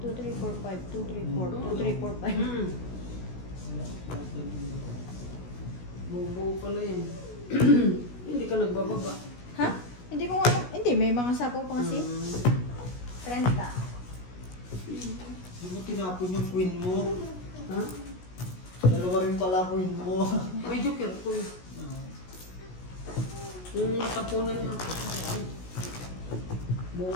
2, 3, 4, 5, 2, 3, 4, 2, 3, 4, 5. Wala. Buo pala yun. Hindi ka nagbababa. Ha? Hindi ko alam. Hindi, may mga sapaw pa kasi. 30. Hindi mo tinapon yung queen mo. Ha? Dalawa rin pala queen mo. May joker ko eh. Yung tapunan niya. Buo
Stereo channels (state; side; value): late; right; 16 ms